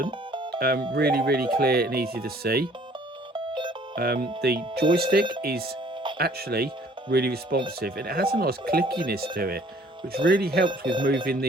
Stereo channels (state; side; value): normal; both; correlation 0.56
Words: really clear and easy to see. The joystick is actually really responsive, and it has a nice clickiness to it, which really helps with moving